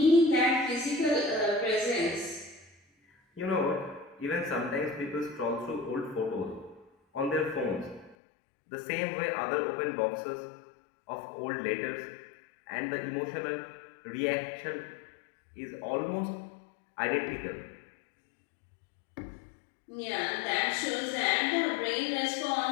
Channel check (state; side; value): drops out; right; at 8.2 s